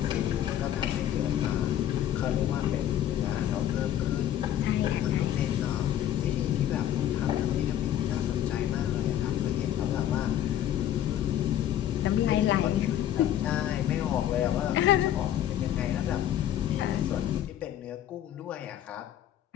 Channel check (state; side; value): quieter; right; 11.3 dB